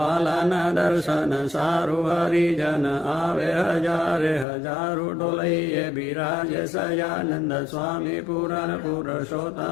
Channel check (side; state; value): right; drops out; at 4.5 s